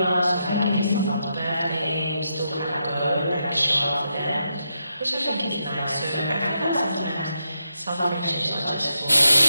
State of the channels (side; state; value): both; inverted; correlation -0.82